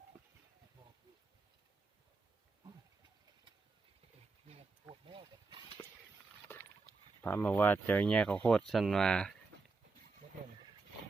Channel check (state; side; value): quieter; left; 4.0 dB